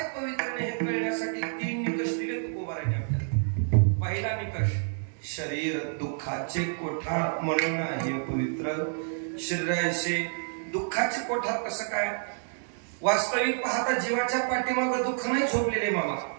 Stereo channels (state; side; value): silent; left; digital silence